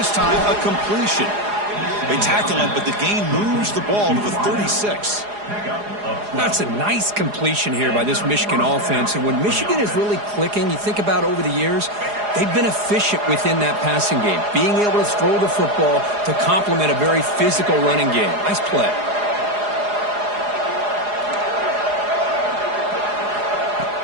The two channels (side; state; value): left; late; 4.8 ms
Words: time a completion. They tackle him, but the gain moves the ball to the 36. That's a nice completion here by this Michigan offense. And when Michigan is really clicking, you think about over the years, they've been efficient within that passing game, being able to throw the football to complement a very physical running game. Nice play.